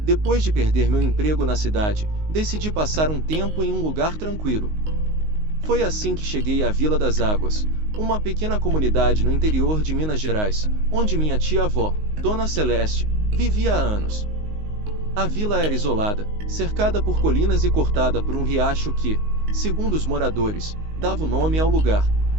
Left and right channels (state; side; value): late; left; 19 ms